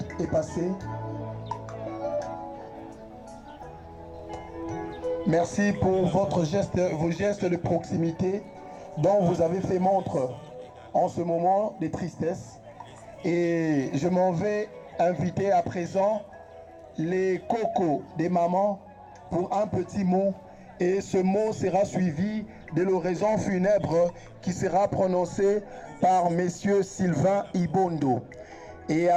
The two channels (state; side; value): identical; both; correlation 1.00